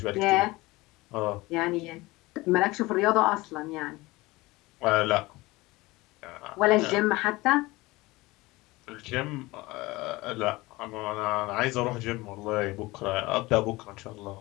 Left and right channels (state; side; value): quieter; right; 21.1 dB